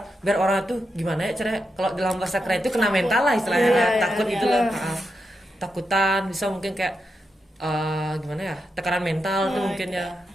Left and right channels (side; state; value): both; normal; correlation 0.86